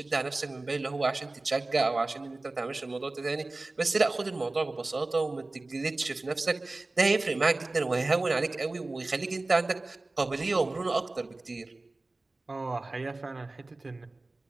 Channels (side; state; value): left; quieter; 3.1 dB